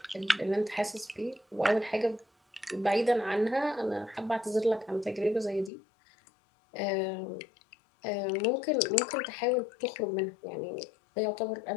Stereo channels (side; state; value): right; drops out; at 5.7 s